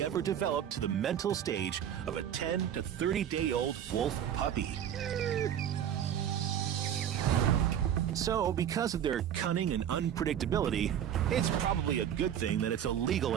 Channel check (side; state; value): left; quieter; 9.7 dB